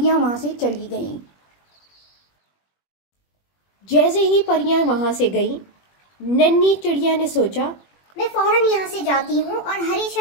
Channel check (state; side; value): late; right; 21 ms